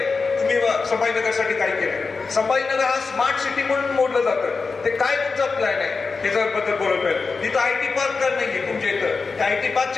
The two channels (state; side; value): quieter; right; 4.5 dB